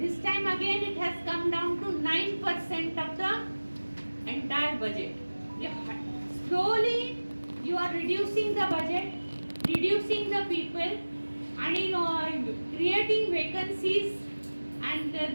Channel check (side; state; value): both; inverted; correlation -1.00